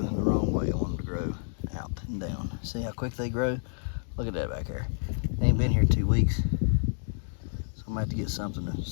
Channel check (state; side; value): silent; right; digital silence